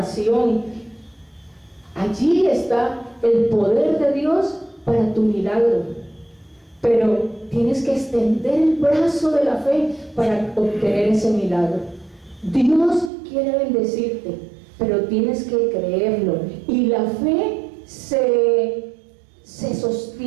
allí está el poder de Dios para tu milagro, pero tienes que extender el brazo de la fe para obtener ese milagro. Dios quiere bendecirte, pero tienes que creerlo, y la fe se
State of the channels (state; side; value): drops out; left; at 13.1 s